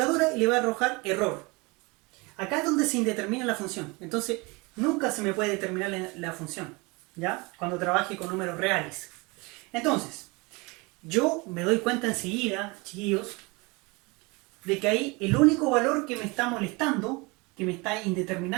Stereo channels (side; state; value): left; quieter; 26.6 dB